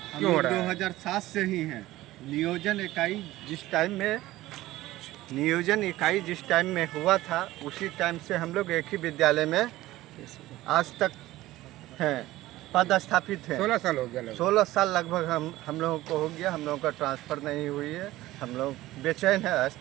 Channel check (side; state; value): left; quieter; 16.6 dB